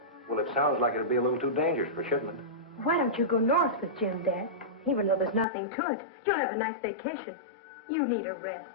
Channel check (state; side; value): drops out; right; at 5.5 s